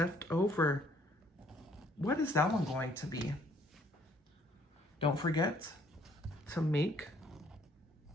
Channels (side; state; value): both; normal; correlation 0.63